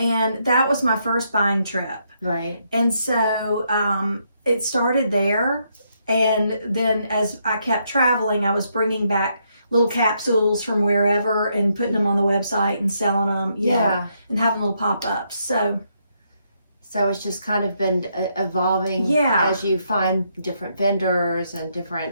that was my first buying trip. Right. And so it started there. And then as I kept traveling, I was bringing back little capsules from wherever and putting them on the website and selling them. And having little pop-ups. So it's just kind of been evolving as you find different vendors and different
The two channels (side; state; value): both; inverted; correlation -0.76